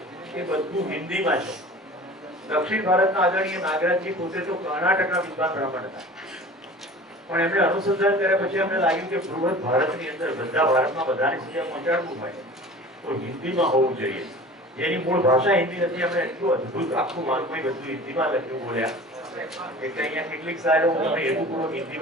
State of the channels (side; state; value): both; normal; correlation 0.40